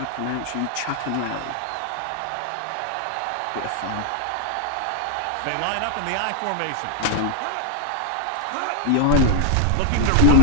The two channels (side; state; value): both; different; correlation 0.00